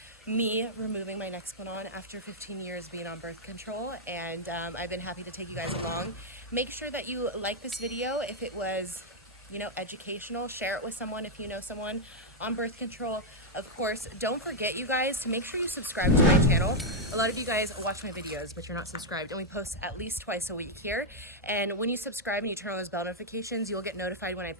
me removing my Nexplanon after 15 years being on birth control. And I've been happy to take you guys along. Make sure that you like this video if it was, you know, educational. Share it with someone if you know someone on birth control. Of course, don't forget, you guys, to make sure you subscribe to my channel. A lot of you guys watch my videos, but you're not subscribed, and we post at least twice a week here. And when you subscribe and you turn on those bell notifications, you'll get notified when I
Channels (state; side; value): normal; both; correlation -0.03